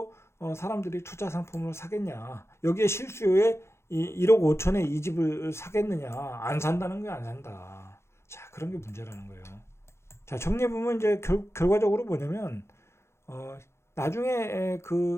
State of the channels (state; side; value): late; right; 0.13 ms